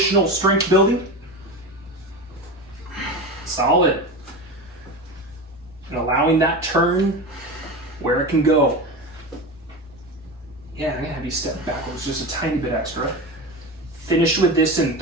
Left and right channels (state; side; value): normal; both; correlation 0.25